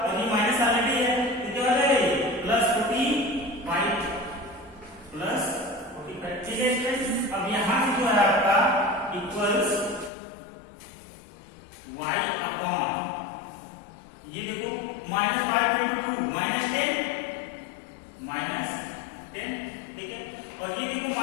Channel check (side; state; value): right; drops out; at 10.1 s